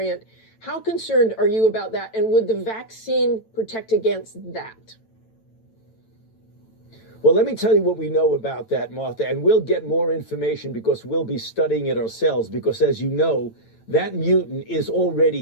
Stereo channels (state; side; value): late; right; 9.0 ms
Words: How concerned are you about that? And would the vaccine protect against that? Well, let me tell you what we know about that, Martha, and we'll get more information because we'll be studying it ourselves, because as you know, that mutant is